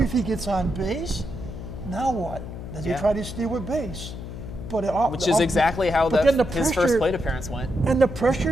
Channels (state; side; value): noise; left; hum, 9 dB below the sound